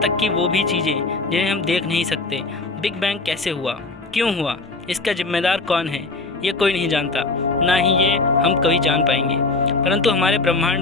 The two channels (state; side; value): quieter; right; 3.5 dB